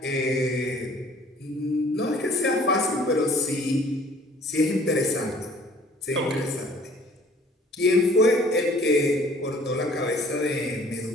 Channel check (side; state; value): both; normal; correlation 0.54